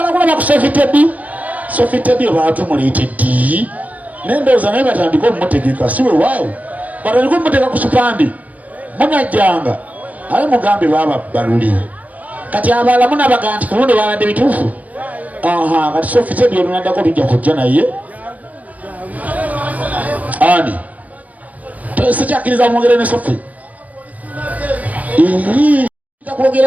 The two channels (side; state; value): left; late; 0.075 ms